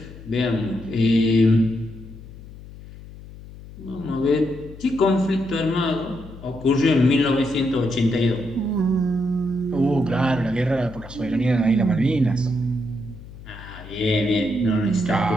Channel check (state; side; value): noise; left; hum, 16 dB below the sound